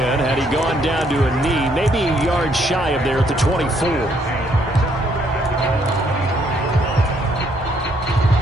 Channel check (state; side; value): normal; both; correlation 0.69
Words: had he gone down to a knee, maybe a yard shy of there at the 24.